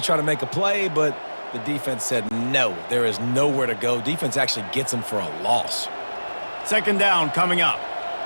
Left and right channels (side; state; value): both; inverted; correlation -1.00